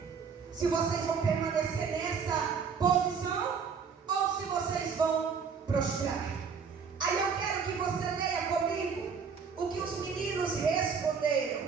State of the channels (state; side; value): quieter; left; 6.0 dB